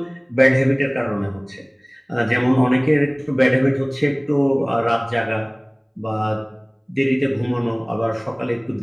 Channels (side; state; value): both; identical; correlation 1.00